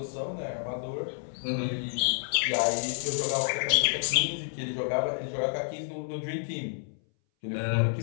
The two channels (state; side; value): silent; right; 58 dB below the other